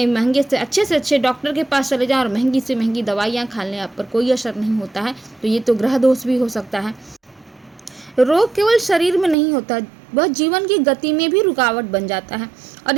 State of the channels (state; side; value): drops out; left; at 9.3 s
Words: महंगे से अच्छे डॉक्टर के पास चले जाएं और महंगी से महंगी दवाइयाँ खा लें, आप पर कोई असर नहीं होता है, तो ये तो ग्रह दोष भी हो सकता है। रोग केवल शरीर में नहीं होता, वह जीवन की गति में भी रुकावट बन जाता है और